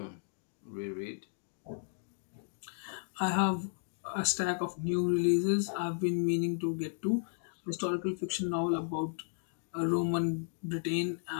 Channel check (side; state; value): right; silent; digital silence